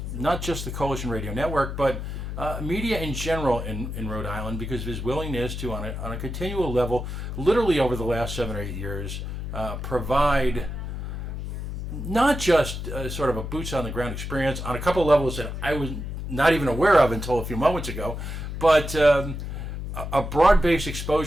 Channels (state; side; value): noise; left; hum, 6 dB below the sound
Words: not just the Coalition Radio Network, but media in general in Rhode Island because of his willingness to, on a continual level, literally over the last 7 or 8 years, provide not just sort of a boots on the ground experience on a couple of levels that I was not even aware of until a few moments ago, but a broad-based